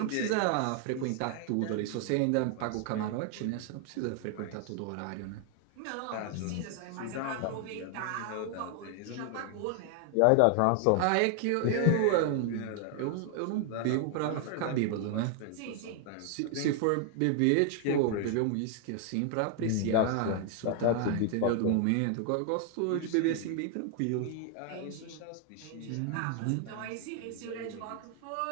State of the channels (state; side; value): different; both; correlation 0.00